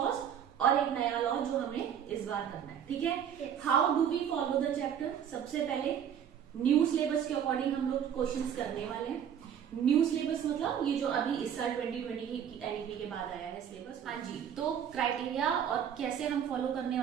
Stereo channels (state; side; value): quieter; left; 8.8 dB